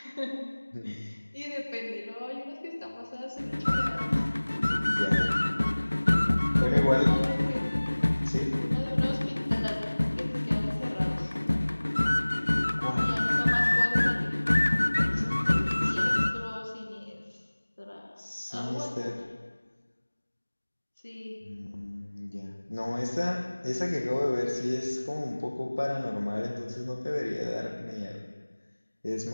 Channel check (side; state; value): both; inverted; correlation -1.00